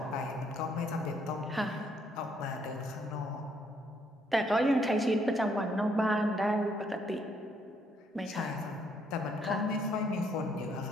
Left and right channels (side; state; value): both; normal; correlation 0.70